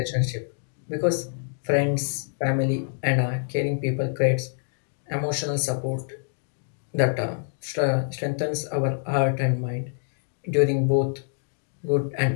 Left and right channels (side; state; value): right; silent; digital silence